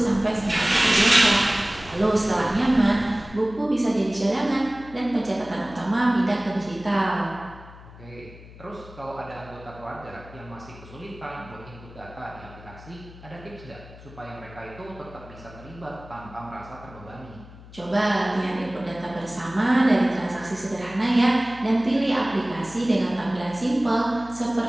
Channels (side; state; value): left; noise; hum, 19 dB below the sound